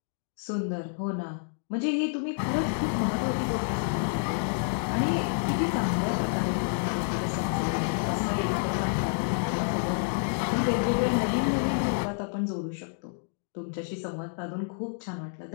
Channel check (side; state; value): right; silent; digital silence